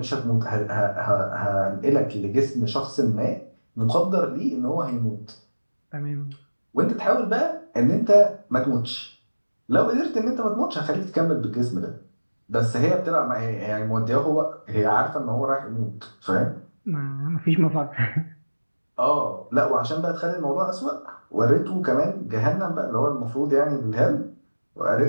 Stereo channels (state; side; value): inverted; both; correlation -1.00